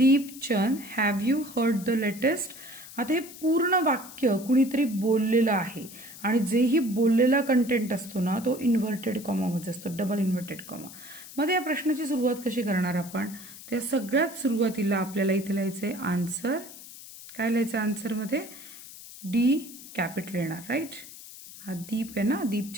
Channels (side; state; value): left; noise; hiss, 16 dB below the sound